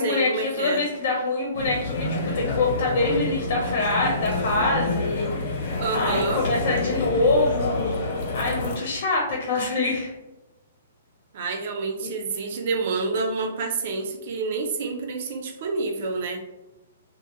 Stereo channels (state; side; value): inverted; both; correlation -0.49